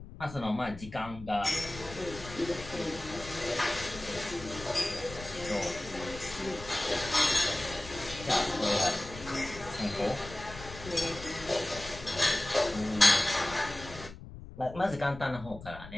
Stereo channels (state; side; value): noise; left; rumble, 14 dB below the sound